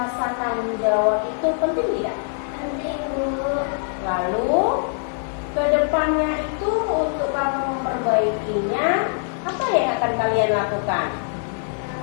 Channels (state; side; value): silent; right; 59 dB below the other